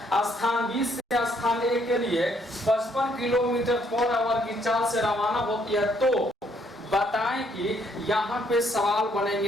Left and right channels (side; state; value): both; normal; correlation 0.69